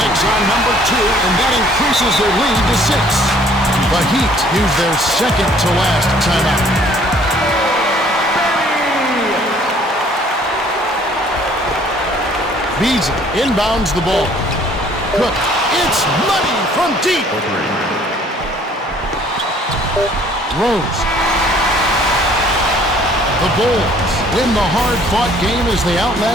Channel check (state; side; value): normal; both; correlation 0.58